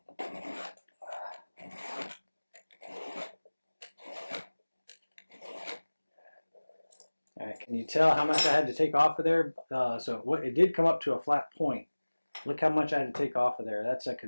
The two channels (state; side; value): inverted; both; correlation -1.00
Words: Can you tell how much I had to take off of there? It did come up to a flat point. Look how much I had to take off of there. That's a